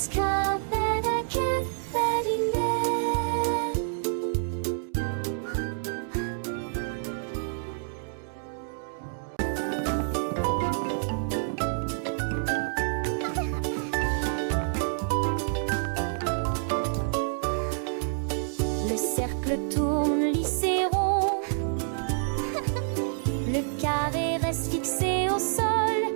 count that I can, that in there. Le cercle tourne lisse et rond. Le carré reste fixé au sol.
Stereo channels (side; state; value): left; silent; digital silence